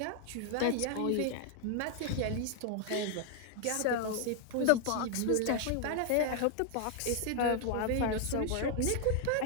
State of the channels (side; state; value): both; different; correlation 0.00